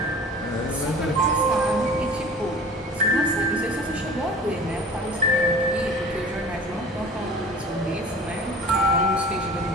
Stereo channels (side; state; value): both; normal; correlation 0.41